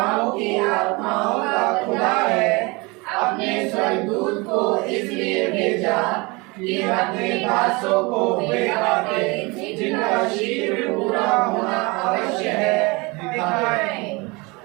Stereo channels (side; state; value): left; quieter; 26.3 dB